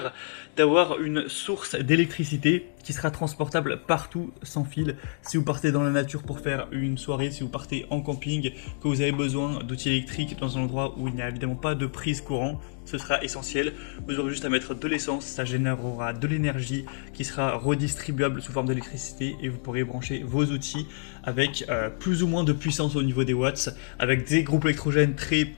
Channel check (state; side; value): silent; right; digital silence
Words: d'avoir une source d'électricité qui sera transportable partout sans fil. Si vous partez dans la nature pour faire une soirée, si vous partez en camping, que vous avez besoin d'outils électriques dans un endroit où il n'y a évidemment pas de prise courant, ce sera essentiel. Vous aurez juste à mettre de l'essence, ça générera de l'énergie qui sera redistribuable sous forme d'électricité et vous pourrez brancher vos outils avec plus ou moins de puissance au niveau des watts. Avec des groupes électrogènes très